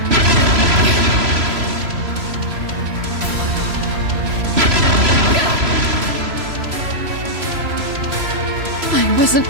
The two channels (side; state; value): left; late; 3.0 ms